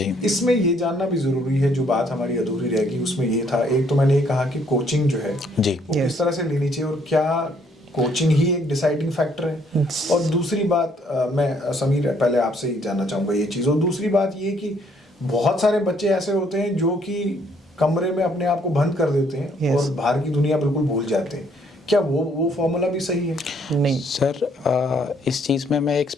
इसमें ये जानना भी ज़रूरी है, जो बात हमारी अधूरी रह गई उसमें ये था, एक तो मैंने ये कहा कि कोचिंग जो है जी, वो किस तरह से लेनी चाहिए और क्या कोचिंग ही एक डिसाइडिंग फैक्टर है। और दूसरी बात, मैं समीर पहले आपसे ही जानना चाहूँगा ये चीज़। और दूसरी बात ये कि बहुत सारे बच्चे ऐसे होते हैं जो कि कमरे में अपने आप को बंद कर देते हैं और बाहर की दुनिया बिल्कुल भूल जाते हैं। क्या वो फॉर्मूला भी सही है? नहीं सर, इस चीज़ में मैं एक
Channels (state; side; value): normal; both; correlation 0.66